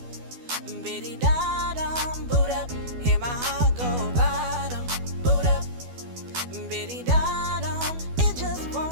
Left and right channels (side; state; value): left; late; 12 ms